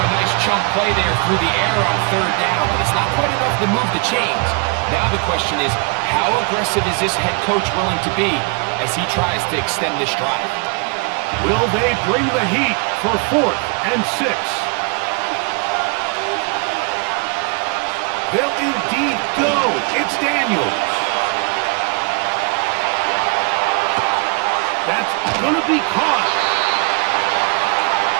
a nice chunk play there through the air on 3rd down, but it's not quite enough to move the chains. Now the question is, how aggressive is this head coach willing to be as he tries to extend this drive? Will they bring the heat for 4th and 6? They'll indeed go. It's Daniels. That's going to be caught.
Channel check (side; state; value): left; quieter; 33.6 dB